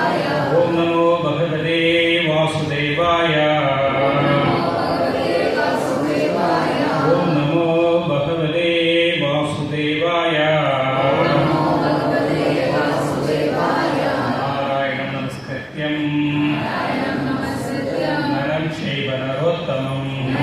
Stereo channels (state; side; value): identical; both; correlation 1.00